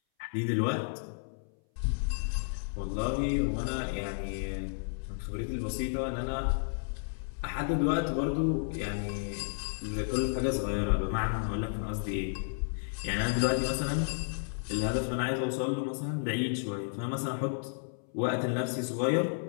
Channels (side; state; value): right; silent; 56 dB below the other